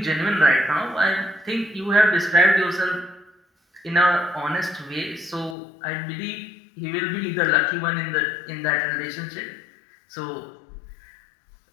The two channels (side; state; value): right; drops out; at 5.6 s